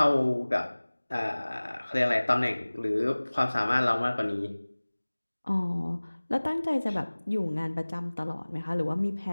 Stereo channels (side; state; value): both; inverted; correlation -1.00